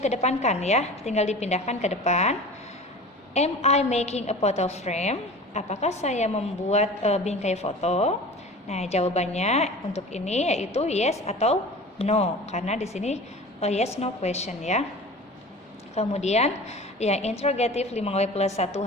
ya, tinggal dipindahkan ke depan. Am I making a photo frame? Apakah saya membuat bingkai foto? Nah, jawabannya untuk ini yaitu yes atau no, karena di sini yes no question ya. Kemudian yang interrogative 5W plus 1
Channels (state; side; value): normal; both; correlation 0.38